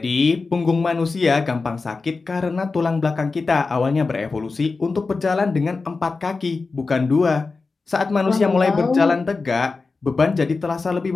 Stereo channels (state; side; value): quieter; right; 4.1 dB